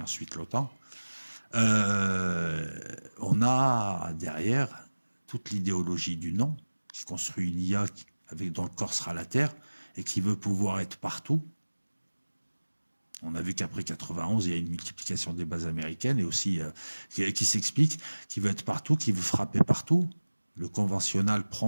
ensuite l'OTAN, on a derrière toute l'idéologie du non, qui construit une IA dont le corps sera la Terre et qui veut pouvoir être partout. On a vu qu'après 91, il y a une multiplication des bases américaines et aussi qui s'explique, qui veut être partout, qui veut frapper partout. Le conventionnel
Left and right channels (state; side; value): inverted; both; correlation -1.00